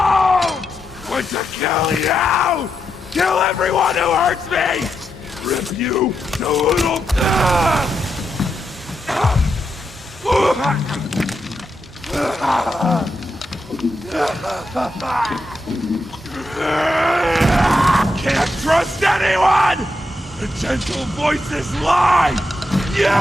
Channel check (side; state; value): both; normal; correlation 0.84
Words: Want to kill you! Kill everyone who hurts me! Rip you to little... Can't trust anyone! The gentle voices lie! You